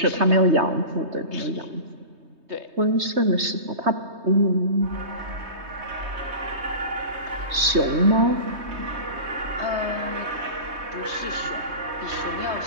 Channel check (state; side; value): late; left; 3.2 ms